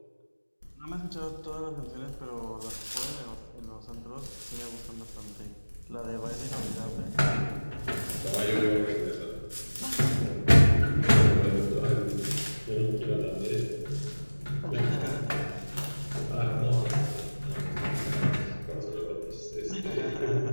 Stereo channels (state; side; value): inverted; both; correlation -1.00